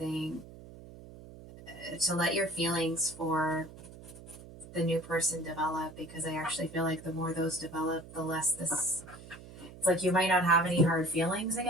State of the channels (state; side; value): noise; right; hum, 17 dB below the sound